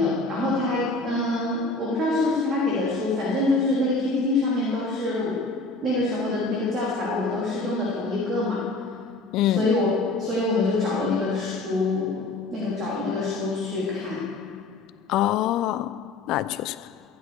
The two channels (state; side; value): quieter; right; 3.3 dB